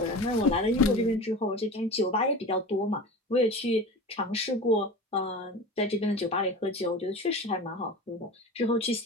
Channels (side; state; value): both; normal; correlation 0.33